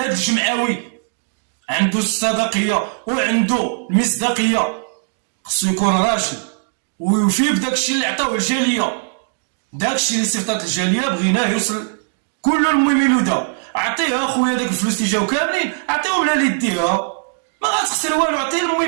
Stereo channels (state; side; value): silent; left; digital silence